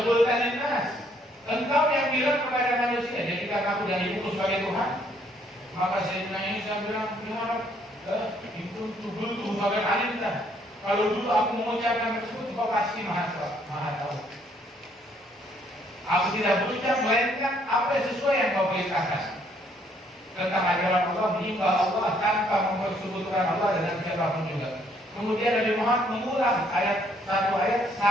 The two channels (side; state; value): both; normal; correlation 0.67